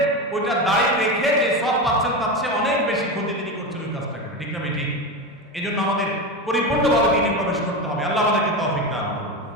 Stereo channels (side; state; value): both; normal; correlation 0.19